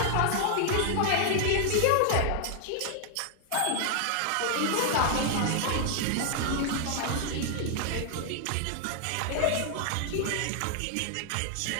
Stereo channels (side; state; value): both; different; correlation 0.00